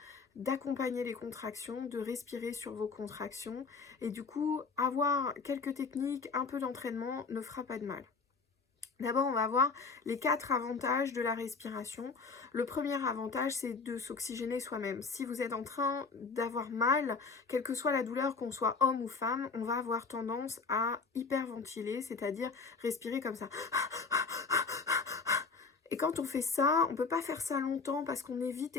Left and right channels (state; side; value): quieter; right; 4.7 dB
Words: d'accompagner les contractions, de respirer sur vos contractions, et du coup, avoir quelques techniques, un peu d'entraînement ne fera pas de mal. D'abord, on va voir les 4 avantages de la respiration. Le premier avantage, c'est de s'oxygéner soi-même. Si vous êtes en train d'avoir mal, quelle que soit la douleur, qu'on soit homme ou femme, on va avoir tendance à hyperventiler, c'est-à-dire respirer comme ça. Et quand on fait ça, on ne peut pas faire ça longtemps parce qu'on est vite